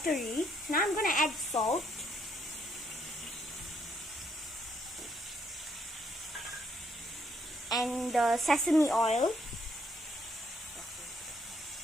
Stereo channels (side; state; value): both; normal; correlation 0.71